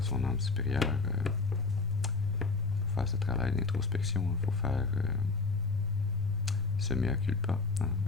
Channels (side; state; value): right; quieter; 4.0 dB